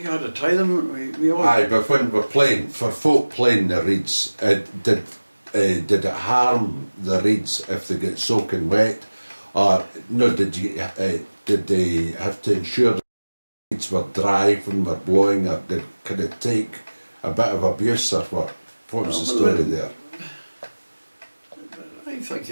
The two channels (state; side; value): inverted; both; correlation -1.00